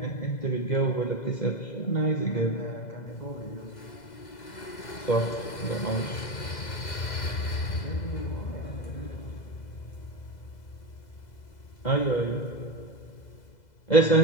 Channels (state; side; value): late; right; 2.0 ms